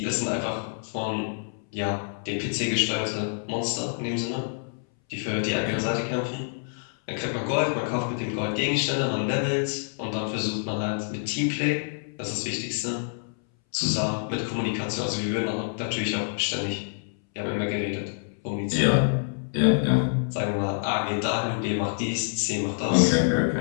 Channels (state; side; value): silent; right; 60 dB below the other